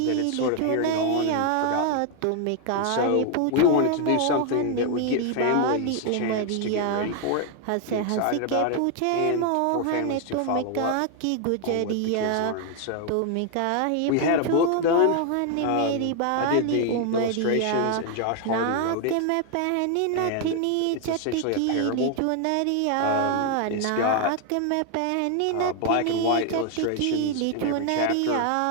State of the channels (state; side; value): different; both; correlation 0.01